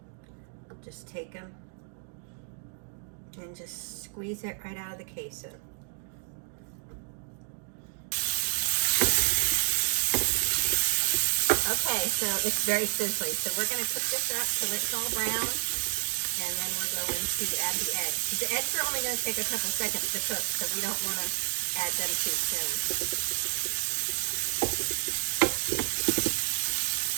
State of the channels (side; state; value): left; silent; digital silence